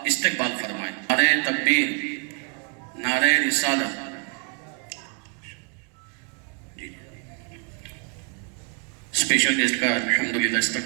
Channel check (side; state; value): left; quieter; 39.5 dB